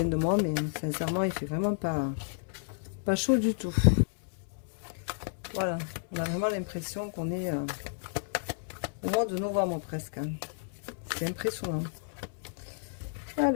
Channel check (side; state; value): right; silent; 57 dB below the other